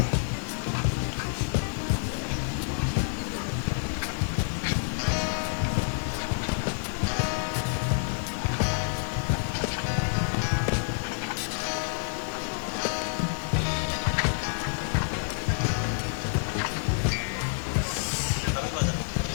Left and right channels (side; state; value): right; silent; digital silence